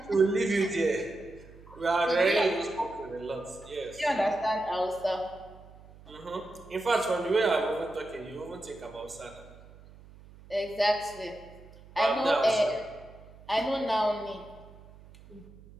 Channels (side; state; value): right; noise; hum, 21 dB below the sound